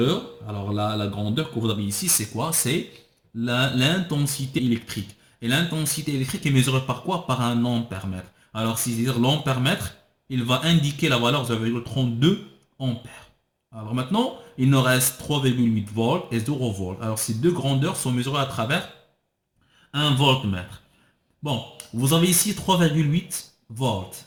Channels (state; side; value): identical; both; correlation 1.00